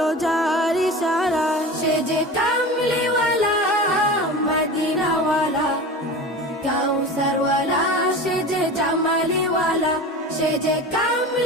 যার ইশারায়। সে যে কামলিওয়ালা মদিনাওয়ালা, কাউসারওয়ালা। সে যে জামালিওয়ালা, সে যে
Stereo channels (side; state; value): both; normal; correlation 0.32